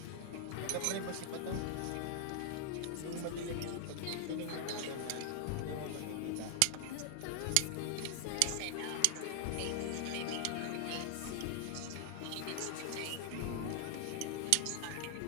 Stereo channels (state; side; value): different; both; correlation 0.00